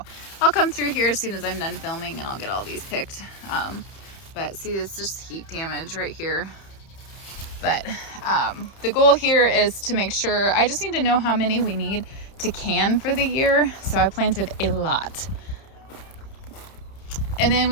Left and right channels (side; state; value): right; late; 30 ms